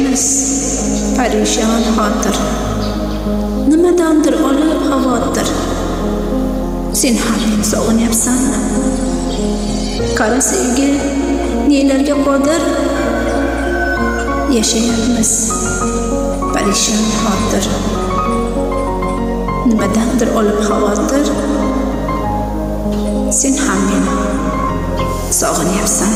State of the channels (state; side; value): identical; both; correlation 1.00